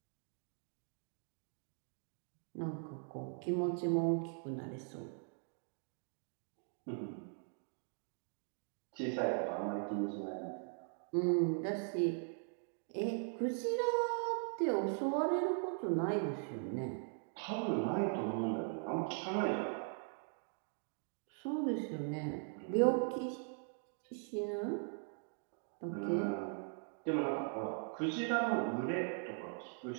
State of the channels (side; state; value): left; silent; 51 dB below the other